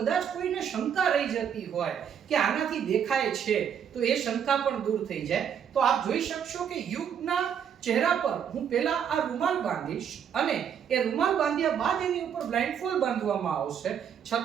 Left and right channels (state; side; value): quieter; left; 8.2 dB